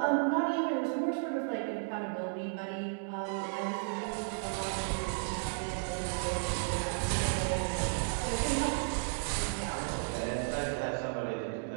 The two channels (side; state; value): left; silent; digital silence